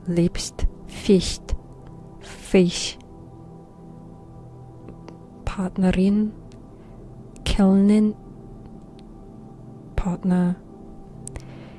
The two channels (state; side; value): identical; both; correlation 1.00